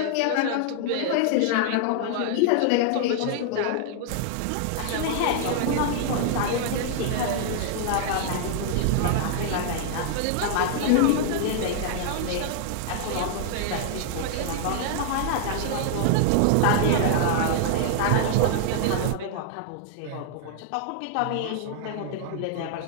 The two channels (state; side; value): different; both; correlation -0.01